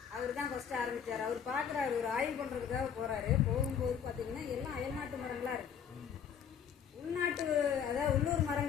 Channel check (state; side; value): quieter; right; 7.9 dB